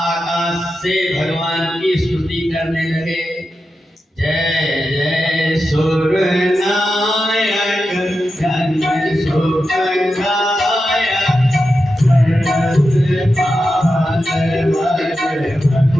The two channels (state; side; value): normal; both; correlation 0.90